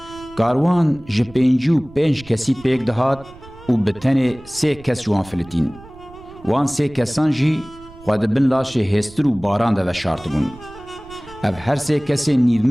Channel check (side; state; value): right; noise; rumble, 21 dB below the sound